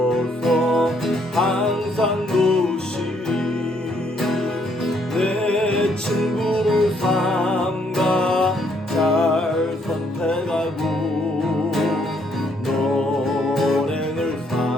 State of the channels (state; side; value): normal; both; correlation 0.69